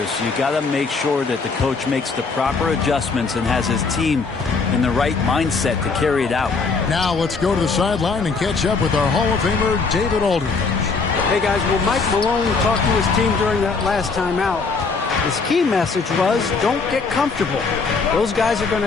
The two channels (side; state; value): right; quieter; 4.5 dB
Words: You got to make sure that the coach makes the proper adjustments and has his team in the right mindset to carry it out. Now let's go to the sideline and catch up with our Hall of Famer, David Aldridge. Hey, guys, well, Mike Malone talked to his team during that last time out. His key message was, don't get comfortable. Those guys are going